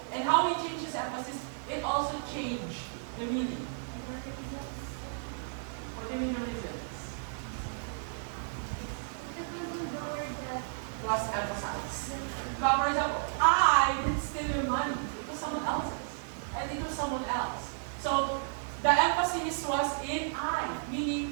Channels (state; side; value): silent; left; digital silence